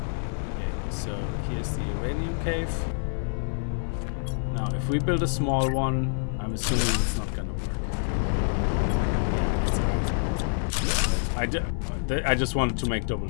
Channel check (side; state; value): right; silent; 60 dB below the other